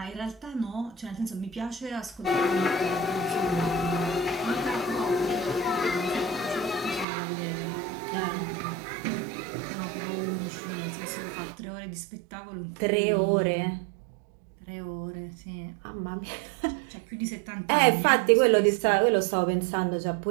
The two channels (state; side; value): drops out; left; at 7.1 s